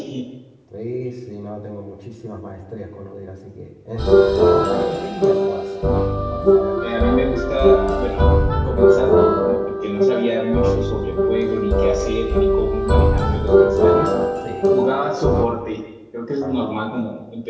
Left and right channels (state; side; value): identical; both; correlation 1.00